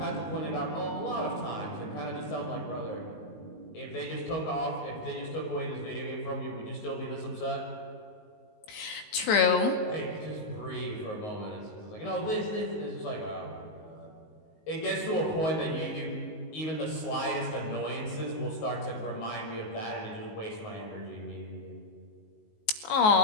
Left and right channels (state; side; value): late; right; 19 ms